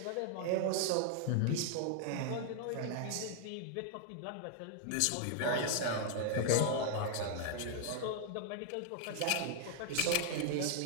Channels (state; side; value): different; both; correlation 0.00